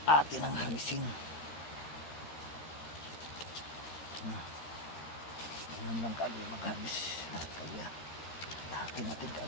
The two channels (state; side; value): late; right; 13 ms